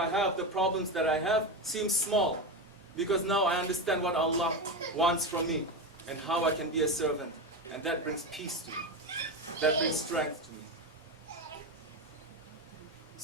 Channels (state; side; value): normal; both; correlation 0.17